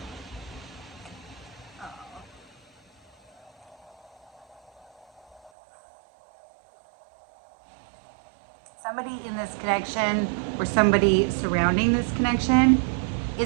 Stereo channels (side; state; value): left; drops out; at 5.5 s